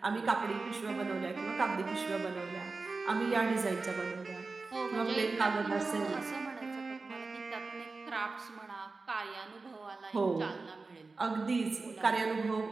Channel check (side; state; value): left; quieter; 3.9 dB